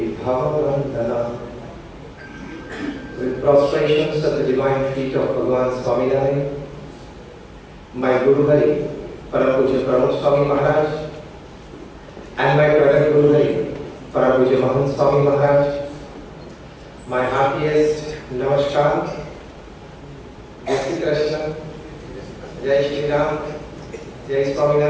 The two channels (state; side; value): identical; both; correlation 1.00